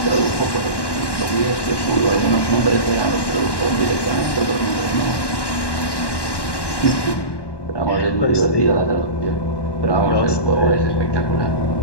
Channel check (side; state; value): right; late; 1.1 ms